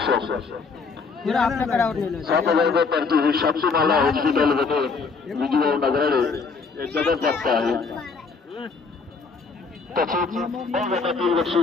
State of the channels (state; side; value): quieter; right; 4.8 dB